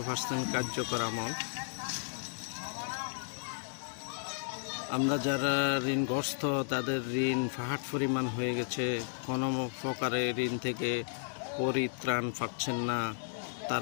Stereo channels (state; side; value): silent; right; digital silence